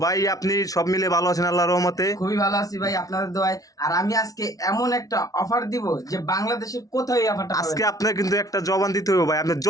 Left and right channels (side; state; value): right; late; 0.18 ms